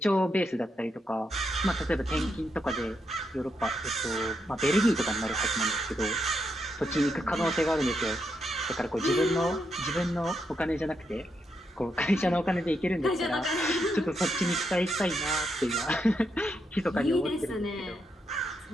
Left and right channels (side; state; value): both; normal; correlation 0.81